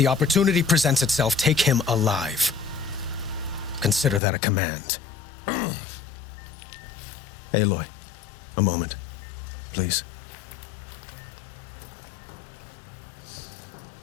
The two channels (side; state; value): right; drops out; at 4.2 s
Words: opportunity presents itself, take him alive. Consider that a command. Aloy, a moment, please.